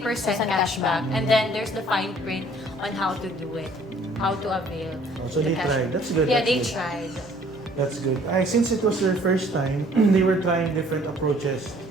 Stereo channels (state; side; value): normal; both; correlation 0.57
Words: cashback, cashback. and then there's the fine print on how to do it, how to avail. Oh, so they the cashback. tried. That's good. Yeah, that's they good. tried. That's good. Since it was their first time, they were trying different approaches